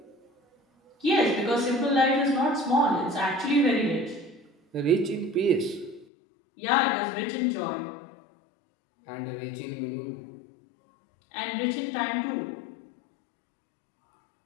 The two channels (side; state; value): right; drops out; at 6.1 s